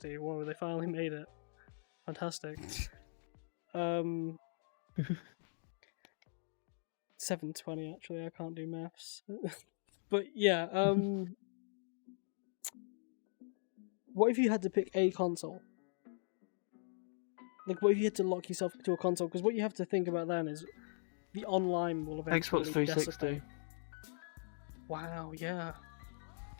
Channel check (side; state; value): right; silent; digital silence